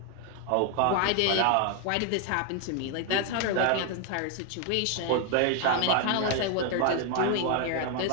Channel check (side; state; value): both; different; correlation 0.00